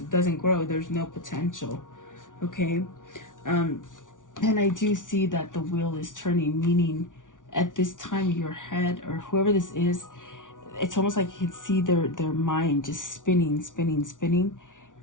no potential. Okay. And I do see that the wheel is turning, meaning at this time your head, or whoever this is, it's almost like you can see their mind just spinning.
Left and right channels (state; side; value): late; right; 0.88 ms